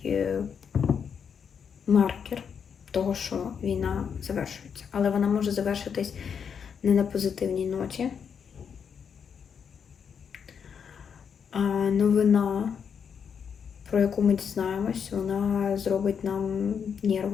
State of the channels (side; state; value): right; quieter; 7.0 dB